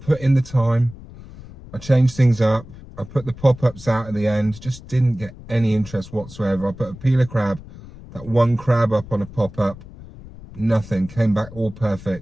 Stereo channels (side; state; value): left; noise; rumble, 17 dB below the sound